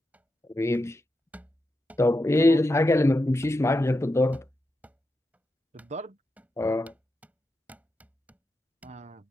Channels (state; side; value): normal; both; correlation 0.87